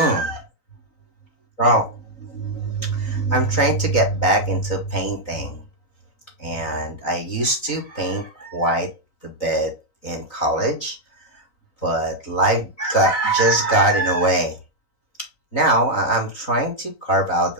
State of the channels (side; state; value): right; late; 3.9 ms